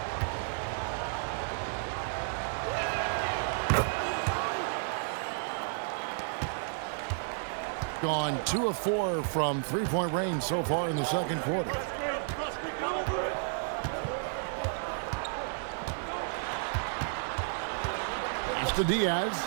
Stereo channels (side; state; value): left; silent; digital silence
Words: Gone 2 of 4 from three-point range so far in the second quarter. It's to Diaz.